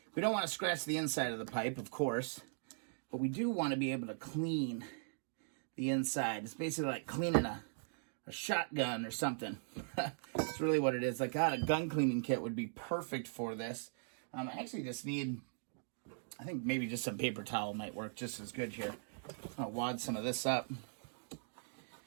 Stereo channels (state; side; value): silent; left; digital silence